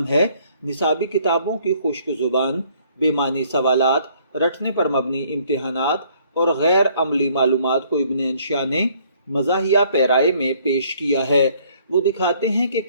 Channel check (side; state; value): both; inverted; correlation -0.62